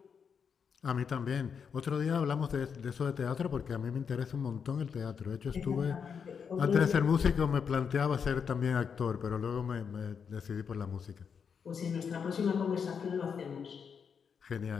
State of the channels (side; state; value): right; quieter; 6.6 dB